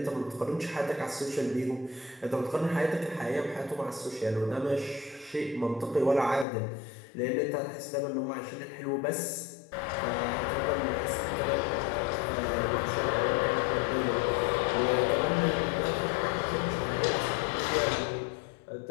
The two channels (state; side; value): drops out; right; at 6.5 s